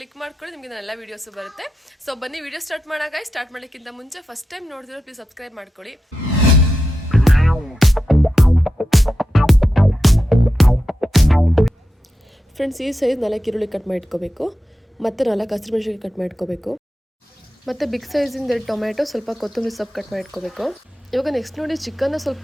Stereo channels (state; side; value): normal; both; correlation 0.89